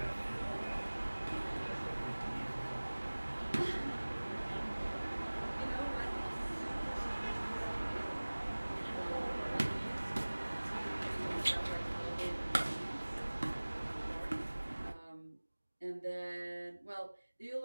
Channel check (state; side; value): inverted; both; correlation -1.00